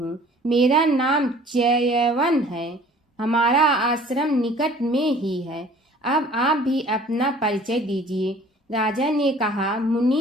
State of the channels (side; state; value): both; normal; correlation 0.51